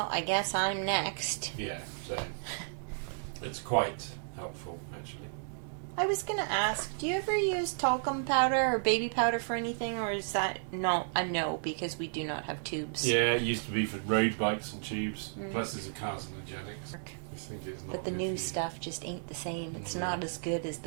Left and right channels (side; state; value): left; silent; digital silence